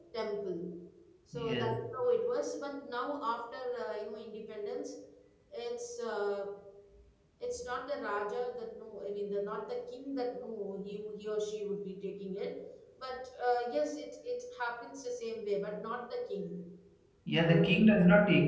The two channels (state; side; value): identical; both; correlation 1.00